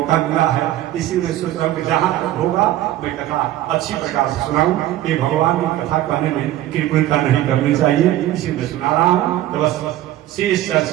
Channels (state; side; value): quieter; left; 14.0 dB